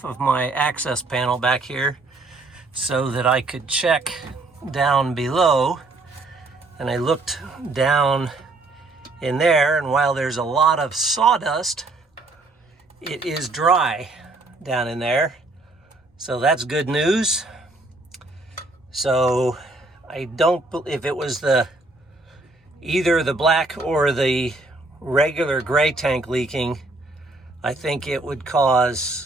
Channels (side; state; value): left; quieter; 3.1 dB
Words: of my access panel back here so that I could check down below, and I looked down in there, and while there's a lot of sawdust, it is dry down in there. So that's good news. So I don't, if it was the either the black or the regular gray tank leaking, I think it would